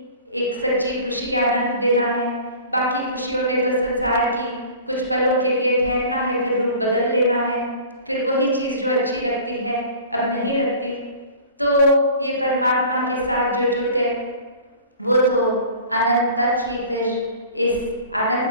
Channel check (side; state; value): both; inverted; correlation -0.43